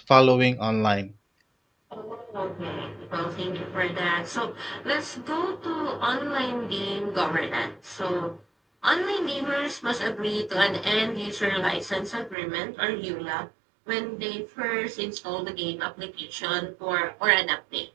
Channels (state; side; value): drops out; left; at 12.4 s